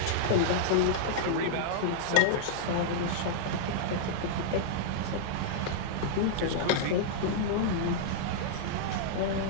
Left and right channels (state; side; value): different; both; correlation -0.02